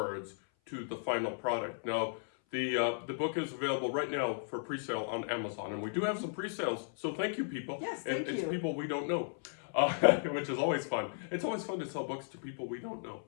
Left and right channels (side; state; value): right; silent; 54 dB below the other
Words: to the final product. Now the book is available right now for pre-sale on Amazon, and we do have some pre-sales. So thank you, people. Yes, thank you. It's people we don't know, which is always fun. It's always fun to sell books to people we don't know.